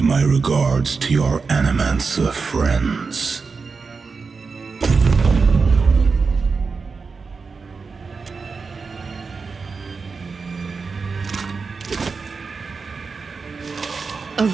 my regards to your Animancer friends.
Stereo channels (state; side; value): quieter; left; 4.7 dB